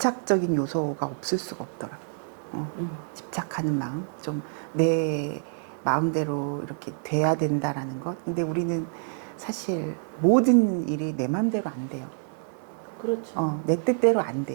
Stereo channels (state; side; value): silent; left; digital silence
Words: 요소가 없을 수가 없더라고요. 집착하는 마음, 좀 내 마음대로 이렇게 돼야 된다라는 것. 근데 우리는 사실 모든 일이 내 마음대로 안 돼요. 그렇죠. 내 뜻대로 안